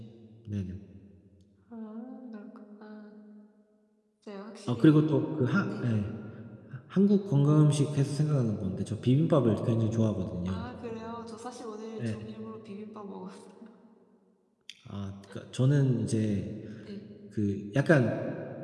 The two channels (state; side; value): identical; both; correlation 1.00